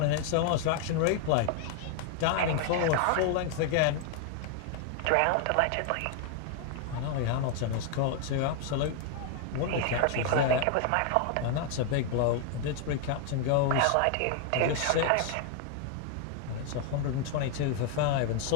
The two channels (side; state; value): both; different; correlation 0.00